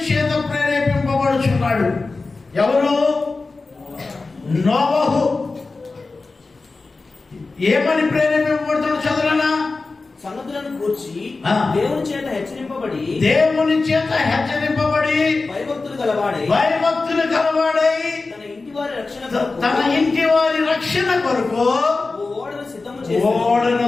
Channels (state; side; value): quieter; right; 3.8 dB